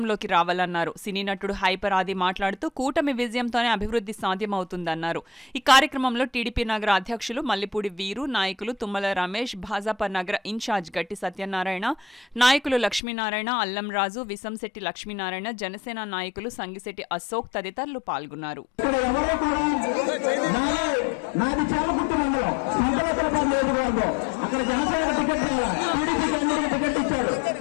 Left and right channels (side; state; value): right; drops out; at 13.0 s